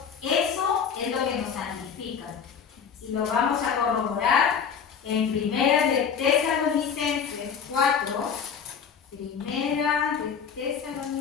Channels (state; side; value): quieter; right; 6.9 dB